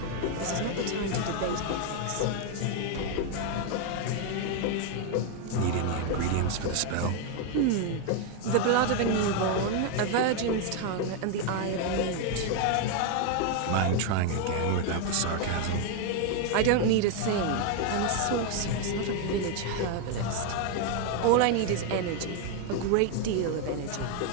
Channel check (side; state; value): both; different; correlation 0.01